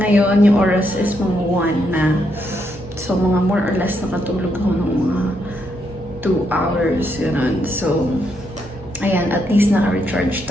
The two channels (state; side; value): normal; both; correlation 0.78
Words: yung oras is mga 1 na. So mga more or less nakatulog ako ng mga 2 hours. Ganun. So, ayan, at least naka-recharge